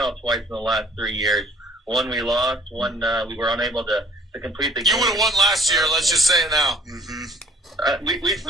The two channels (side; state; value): both; normal; correlation 0.56